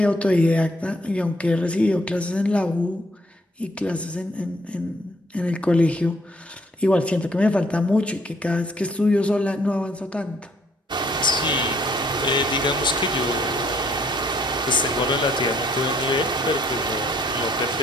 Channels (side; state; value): both; normal; correlation 0.65